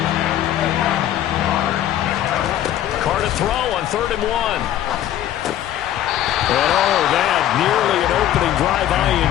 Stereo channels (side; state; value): right; quieter; 12.1 dB